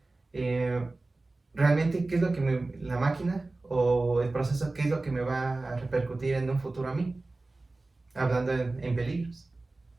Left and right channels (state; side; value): quieter; left; 3.2 dB